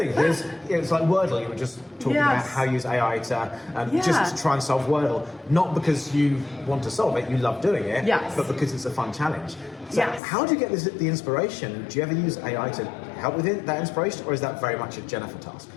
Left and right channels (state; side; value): drops out; right; at 10.2 s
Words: It's like Wordle. You were just talking about how you use AI to just to try and solve Wordle, not because you want to solve it, you love doing it, but because it's a fun challenge. So how do you get the inspiration? Do you ever use AI to help with that inspiration, or is that very much a Jennifer task?